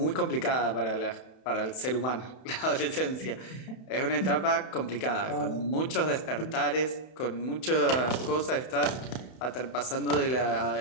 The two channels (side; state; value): right; late; 31 ms